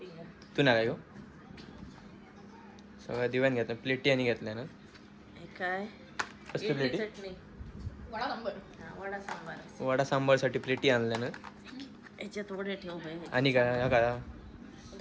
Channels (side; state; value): both; identical; correlation 1.00